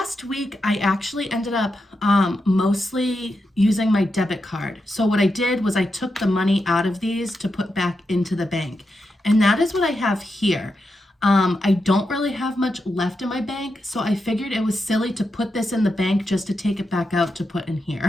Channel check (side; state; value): both; normal; correlation 0.86